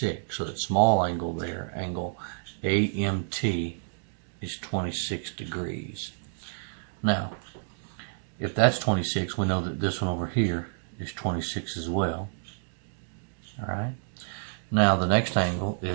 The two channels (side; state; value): left; silent; digital silence